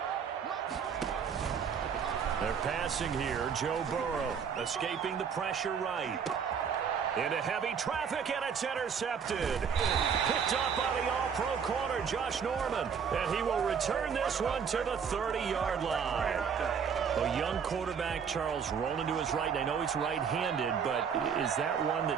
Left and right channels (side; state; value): left; quieter; 6.9 dB